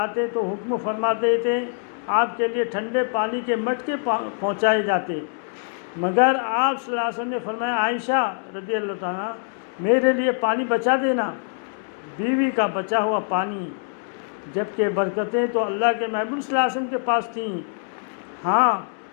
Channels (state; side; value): silent; right; 61 dB below the other